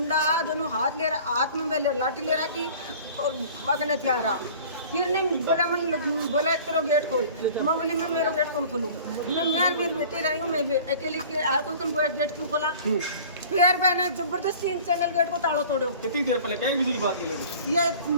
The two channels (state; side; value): inverted; both; correlation -0.45